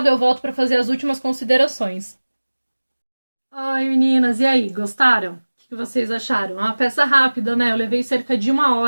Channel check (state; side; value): inverted; both; correlation -1.00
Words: Eu volto para fazer as últimas considerações. Oi, meninas, e aí, gostaram? O que vocês acharam? É uma peça rápida, né? Eu levei cerca de 1